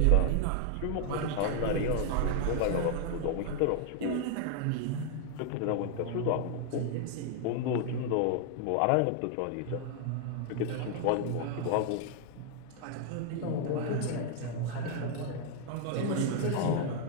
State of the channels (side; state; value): both; different; correlation 0.00